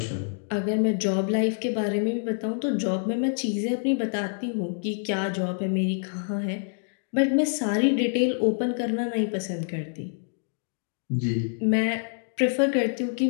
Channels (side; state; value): right; silent; digital silence